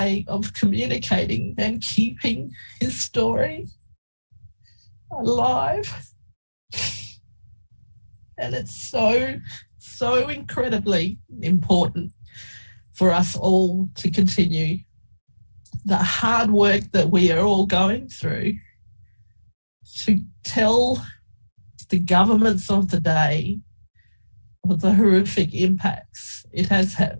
of communicating and keeping his story alive. And it's so incredibly important for us all to continue the hard work that we are all going through to tell the governments of the day of the horrific impacts it has had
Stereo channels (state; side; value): inverted; both; correlation -1.00